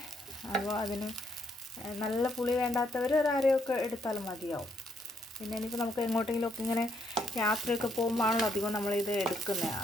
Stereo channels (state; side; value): normal; both; correlation 0.73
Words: അപ്പോൾ അതിന് നല്ല പുളി വേണ്ടാത്തവർ ഒരു അരയൊക്കെ എടുത്താലും മതിയാവും. പിന്നെ ഇനിയിപ്പോൾ നമുക്ക് എങ്ങോട്ടെങ്കിലുമൊക്കെ ഇങ്ങനെ യാത്രയൊക്കെ പോകുമ്പോഴാണല്ലോ അധികം നമ്മളിത് എടുക്കുന്നത്.